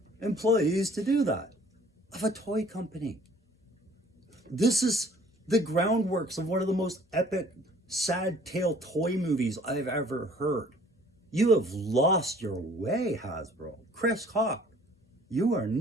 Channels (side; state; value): both; normal; correlation 0.55